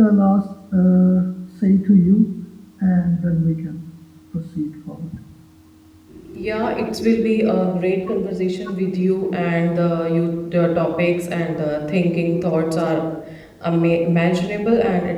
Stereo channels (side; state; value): both; identical; correlation 1.00